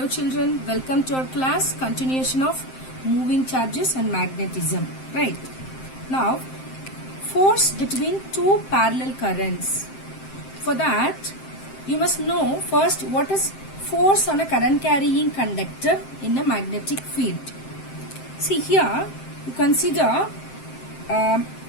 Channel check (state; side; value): late; right; 7.7 ms